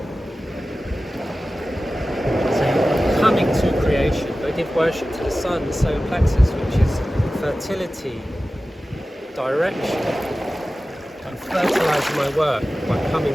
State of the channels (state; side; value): normal; both; correlation 0.95